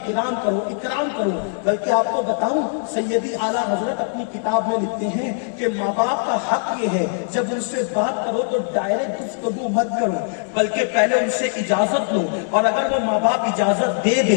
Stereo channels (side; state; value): right; silent; digital silence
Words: کرو، اکرام کرو۔ بلکہ آپ کو بتاؤں، سیدی اعلیٰ حضرت اپنی کتاب میں لکھتے ہیں کہ ماں باپ کا حق یہ ہے جب ان سے بات کرو تو ڈائریکٹ گفتگو مت کرو، بلکہ پہلے ان سے اجازت لو، اور اگر وہ ماں باپ اجازت دے